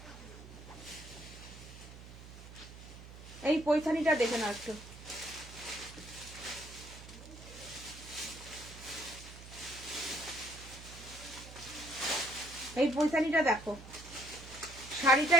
এই পৈথানিটা দেখে নাও একটু, এই পৈথানিটা দেখো, শাড়িটা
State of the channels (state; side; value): noise; right; hum, 15 dB below the sound